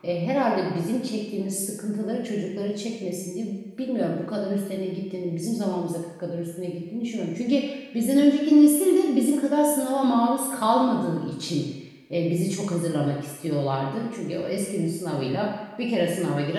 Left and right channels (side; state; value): both; identical; correlation 1.00